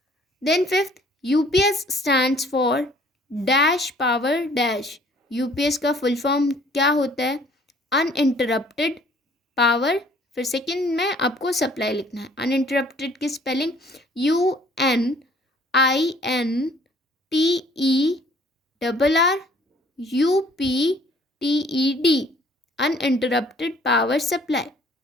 Then fifth, UPS stands for dash power dash. UPS का फुल फॉर्म क्या होता है, अनइंटरप्टेड पावर, फिर सेकंड में आपको सप्लाई लिखना है। अनइंटरप्टेड की spelling UNINTERRUPTED, uninterrupted power supply.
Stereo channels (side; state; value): both; normal; correlation 0.57